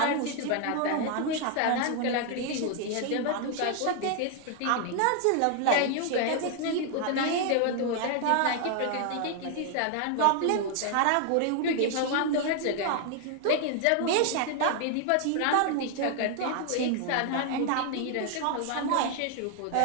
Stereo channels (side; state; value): both; different; correlation 0.00